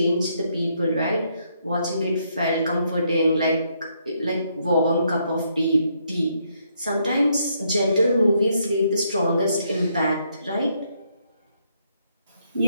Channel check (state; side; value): inverted; both; correlation -0.74